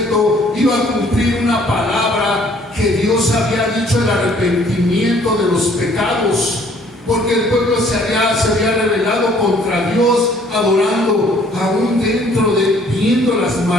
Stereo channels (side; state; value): both; normal; correlation 0.59